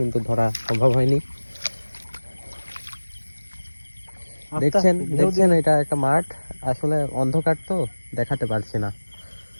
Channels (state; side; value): inverted; both; correlation -1.00